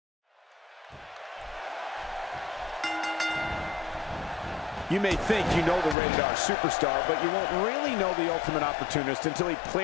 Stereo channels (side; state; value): right; drops out; at 6.0 s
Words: You may think you know the rated R superstar, but you won't really know the ultimate opportunist until he